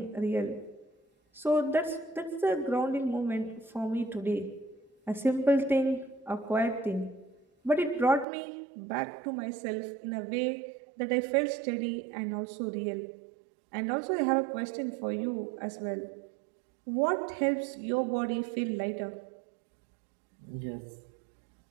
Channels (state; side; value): drops out; left; at 8.2 s